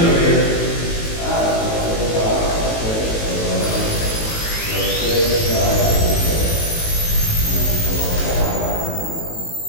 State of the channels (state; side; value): late; right; 18 ms